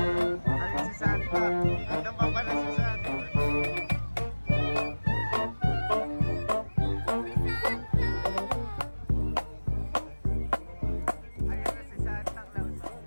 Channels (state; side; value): inverted; both; correlation -1.00